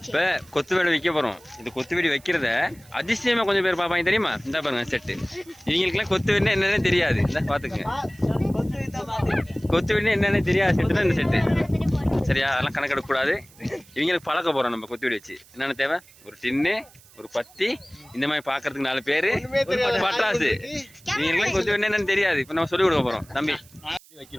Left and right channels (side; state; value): right; noise; hiss, 25 dB below the sound